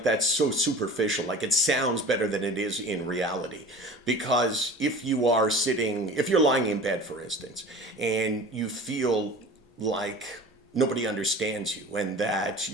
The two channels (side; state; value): both; normal; correlation 0.38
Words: that's so superficial, like it sounds better than it is in reality. Because if you're lying in bed, for instance, and you feel like nobody understands you and that